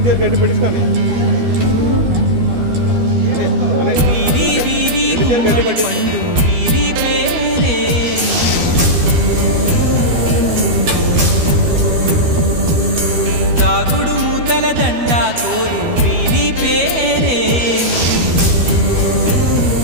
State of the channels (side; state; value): left; late; 12 ms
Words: వీరి వీరి గుమ్మడి పండు వీరి పేరే, దాగుడు మూతల దండా కోరు వీరి పేరే.